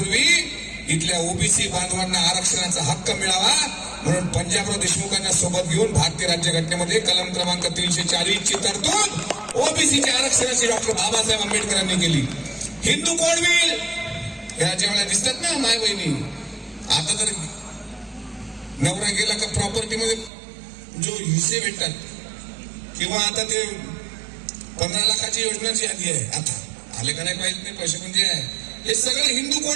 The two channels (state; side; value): drops out; left; at 20.3 s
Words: इथल्या ओबीसी बांधवांना आरक्षणाचा हक्क मिळावा म्हणून पंजाबराव देशमुखांना सोबत घेऊन भारतीय राज्यघटनेमध्ये कलम क्रमांक 340 ची तरतूद ओबीसीच्या आरक्षणाची डॉक्टर बाबासाहेब आंबेडकरांनी केली. हिंदू कोण होईल या ज्यावेळेला दिसतात ना माय बहिणी. आता तर नवरा गेला का प्रॉपर्टी मध्ये जो हिस्से भेटतात, किंवा आता ते 15 लाखाची योजना जी आली आहे, आता आले का नाही पाहिजे नाही पैसे, पण जे आहे हे सगळे हिंदू